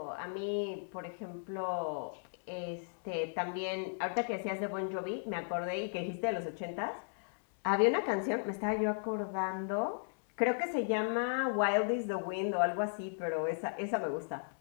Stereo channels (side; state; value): right; silent; digital silence